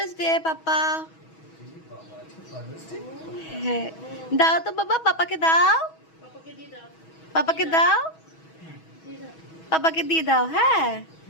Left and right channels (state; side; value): late; right; 6.2 ms